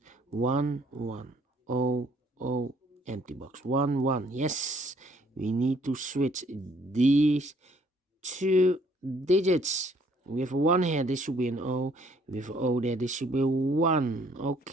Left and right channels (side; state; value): both; normal; correlation 0.63